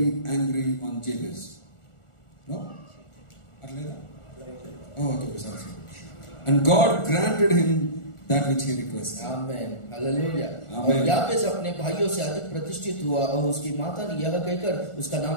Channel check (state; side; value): late; right; 1.4 ms